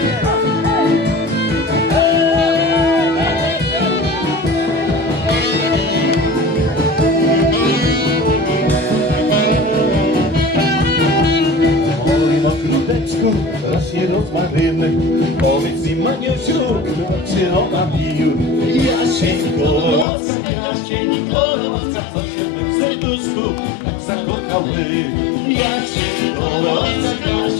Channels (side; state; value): right; drops out; at 20.1 s